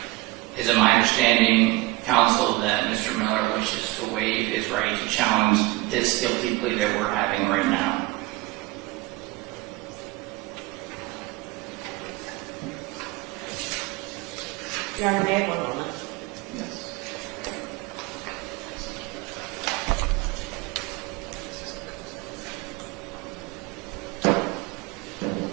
is it my understanding, counsel, that Mr. Miller wishes to waive his right to challenge this guilty plea that we're having right now? Your Honor, may I have 1 moment? Yes.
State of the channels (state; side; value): quieter; left; 20.6 dB